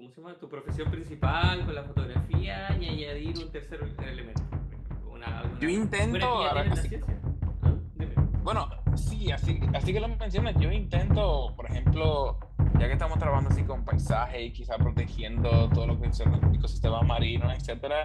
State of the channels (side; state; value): both; identical; correlation 1.00